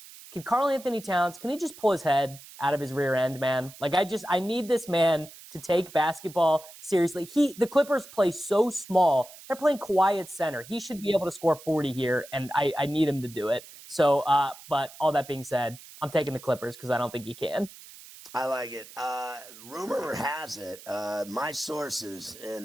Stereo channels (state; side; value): noise; right; hiss, 18 dB below the sound